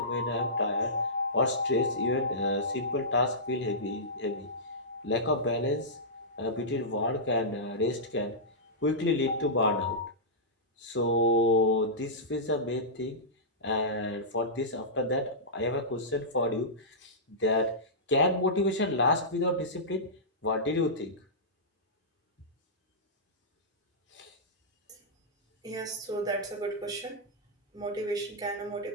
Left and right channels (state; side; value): normal; both; correlation -0.16